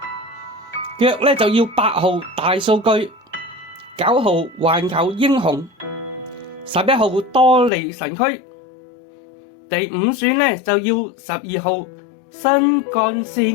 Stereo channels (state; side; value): drops out; right; at 7.7 s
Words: 腳咧就要8號大數據，9號環球英雄，11號多利神區，第5選咧就要12號新幹